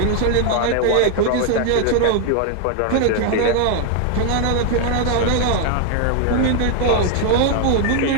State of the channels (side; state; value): both; different; correlation 0.01